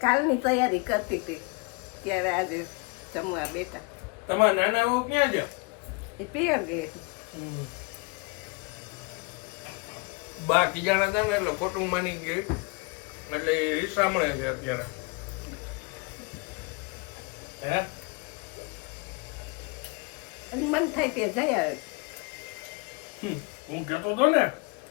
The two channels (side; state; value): right; quieter; 29.3 dB